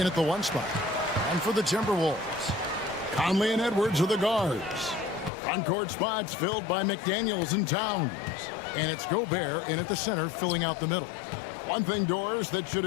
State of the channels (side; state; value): right; drops out; at 5.3 s